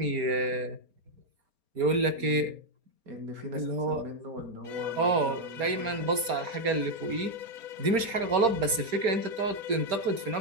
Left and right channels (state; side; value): late; left; 4.3 ms